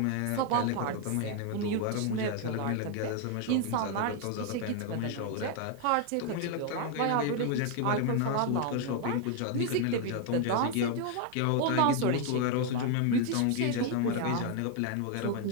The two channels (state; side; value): different; both; correlation 0.01